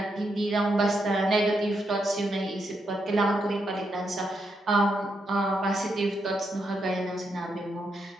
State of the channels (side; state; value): both; normal; correlation 0.81